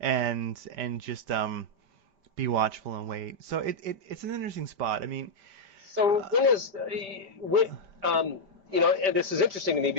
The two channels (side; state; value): left; late; 5.1 ms